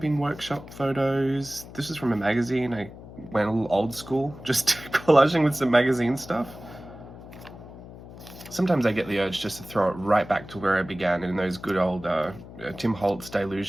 workshop photos. This is from a magazine. I went a little old school, just collaging with some magazine stuff. Sometimes I get the urge just to throw it right back to where I began in those good old Tim Holtz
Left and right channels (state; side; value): noise; left; hum, 16 dB below the sound